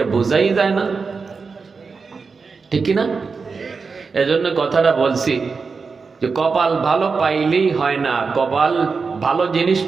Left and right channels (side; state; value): left; quieter; 4.8 dB